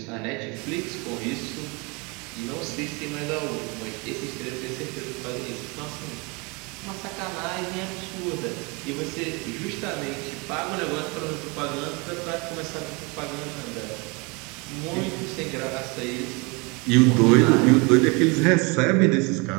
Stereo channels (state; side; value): quieter; left; 28.9 dB